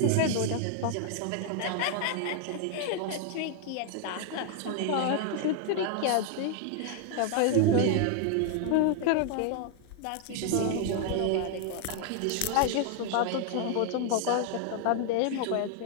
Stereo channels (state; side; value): different; both; correlation 0.00